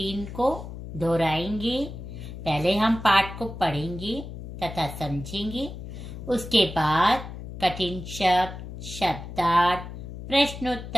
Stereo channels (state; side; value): noise; left; hum, 10 dB below the sound